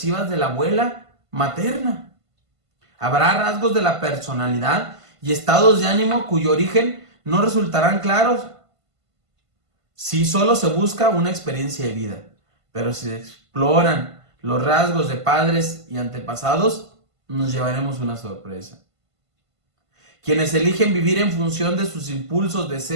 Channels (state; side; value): late; left; 1.5 ms